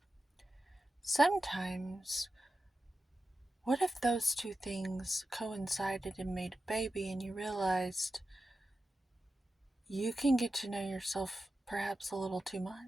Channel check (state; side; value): normal; both; correlation 0.92